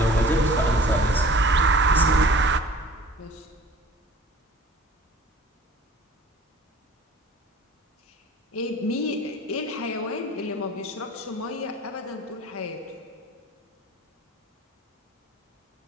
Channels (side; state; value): both; normal; correlation 0.46